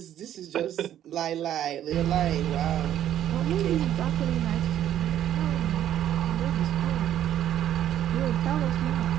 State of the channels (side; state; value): left; quieter; 11.3 dB